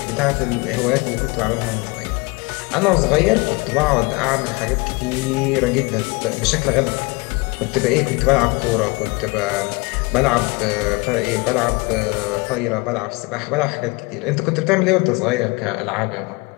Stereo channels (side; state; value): right; quieter; 26.5 dB